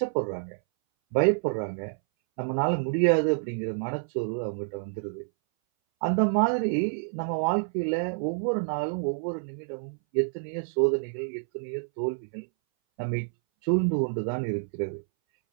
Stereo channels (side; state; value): left; silent; 59 dB below the other